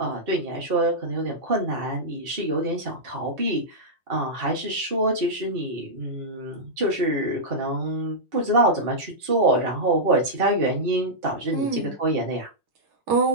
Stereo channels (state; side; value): late; left; 2.7 ms